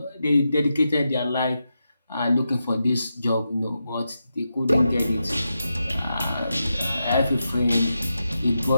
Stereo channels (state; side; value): inverted; both; correlation -0.87